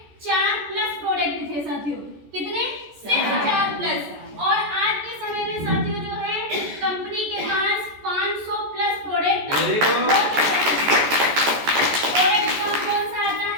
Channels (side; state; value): left; late; 14 ms